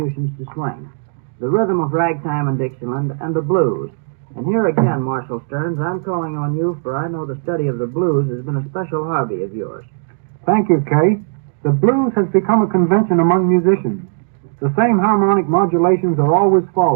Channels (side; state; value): left; silent; digital silence